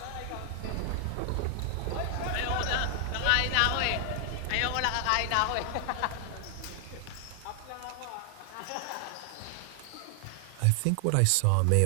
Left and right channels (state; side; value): different; both; correlation 0.00